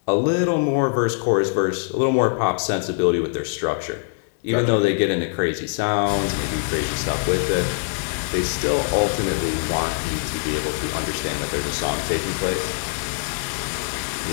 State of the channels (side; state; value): right; silent; 64 dB below the other